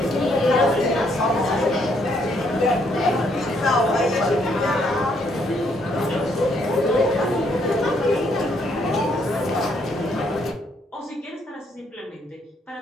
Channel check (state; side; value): normal; both; correlation 0.71